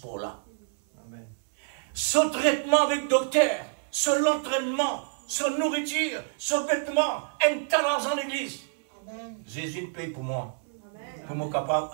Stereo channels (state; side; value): silent; left; 56 dB below the other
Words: là. Son traitement avec le docteur, son entraînement, son nourriture, son vêtement, un talent en l'église. Jésus paye pour moi. Pour moi capable